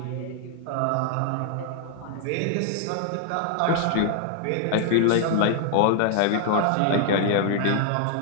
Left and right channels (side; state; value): both; different; correlation 0.00